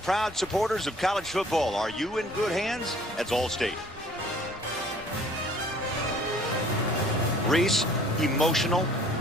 supporters of college football. Are you in good hands? That's Allstate. Reese, emotional.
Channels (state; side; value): normal; both; correlation 0.54